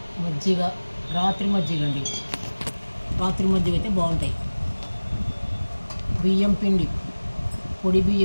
మజ్జిగ, రాత్రి మజ్జిగ అండి. రాత్రి మజ్జిగ అయితే బాగుంటాయి. బియ్యం పిండి, పొడి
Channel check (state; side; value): inverted; both; correlation -1.00